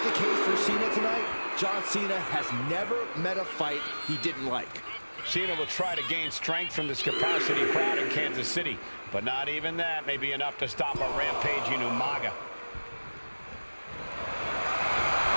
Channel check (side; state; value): both; inverted; correlation -1.00